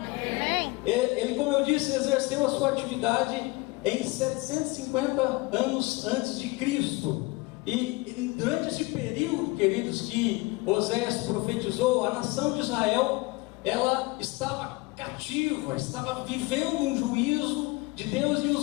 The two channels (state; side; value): quieter; right; 23.5 dB